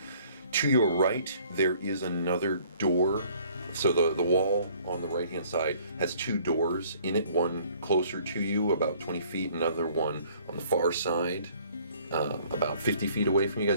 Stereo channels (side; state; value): both; inverted; correlation -0.58